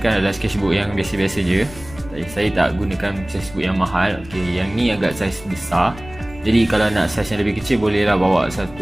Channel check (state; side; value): noise; left; rumble, 18 dB below the sound